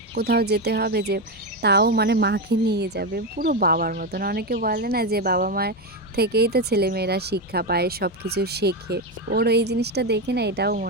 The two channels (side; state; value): both; normal; correlation 0.11